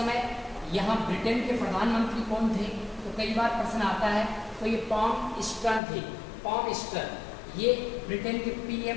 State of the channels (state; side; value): drops out; right; at 5.8 s